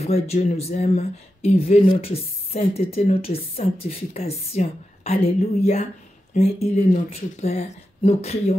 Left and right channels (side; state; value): both; normal; correlation 0.90